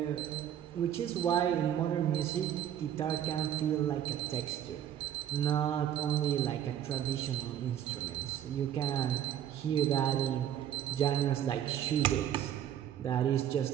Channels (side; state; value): left; quieter; 10.4 dB